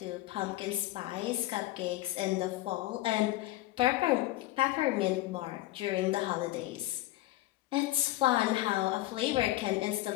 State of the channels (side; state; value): right; quieter; 16.7 dB